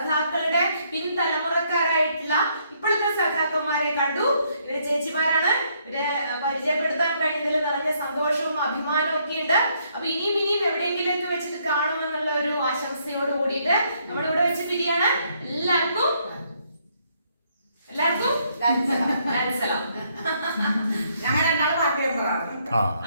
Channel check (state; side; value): inverted; both; correlation -0.71